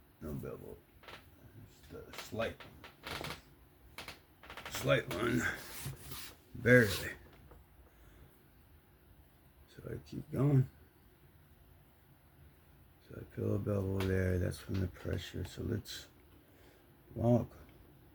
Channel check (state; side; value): identical; both; correlation 1.00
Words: no bevel. Just a slight one. Barely. So I keep going. So I feel a bevel there. That's from the pressure. So let's walk